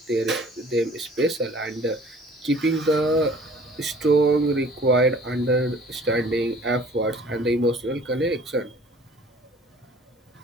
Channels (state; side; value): normal; both; correlation 0.51